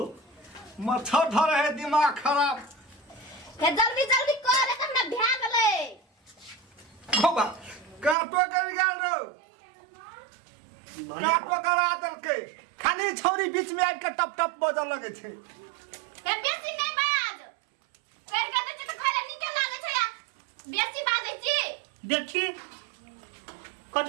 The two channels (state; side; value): drops out; left; at 8.2 s